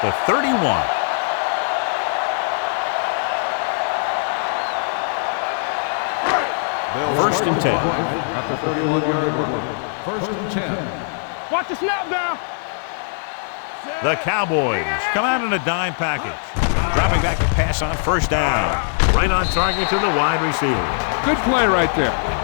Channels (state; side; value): silent; right; digital silence